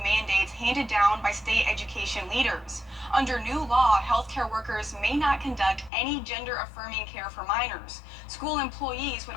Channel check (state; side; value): drops out; right; at 5.9 s